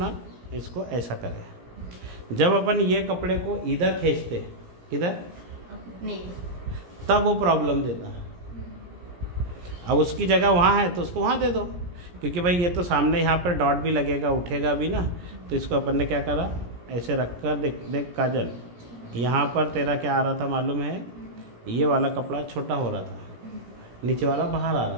इसको ऐसा करें। जब अपन ये कपड़े को इधर खींचते, इधर नहीं, तब वो प्रॉब्लम देता है। अब उसकी जगह वहाँ है तो उसको वहाँ दे दो, क्योंकि भाई ये तो सामने यहाँ पर डॉट भी लगेगा, उठेगा भी ना। तो इसको अपन ने क्या करा, ऐसे रख कर देख काजल, यहाँ पर तेरा क्या आ रहा था मालूम है, ये वाला कपड़ा छोटा हो रहा था, नीचे वाला बाहर आ रहा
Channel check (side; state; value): left; late; 17 ms